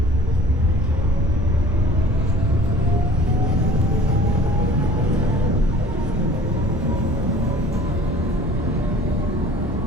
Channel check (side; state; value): both; normal; correlation 0.47